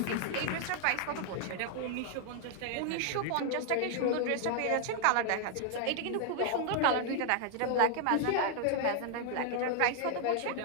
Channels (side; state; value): both; different; correlation 0.00